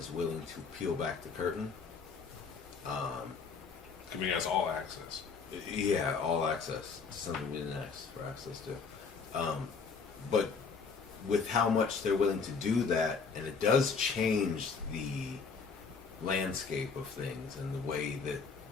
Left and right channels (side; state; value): right; quieter; 5.2 dB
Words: willing to peel back the curtain. Giving us all access. Yeah, all access. Something we didn't ask for access to. But with how much they're willing to do that, and it does change the landscape of things and the way that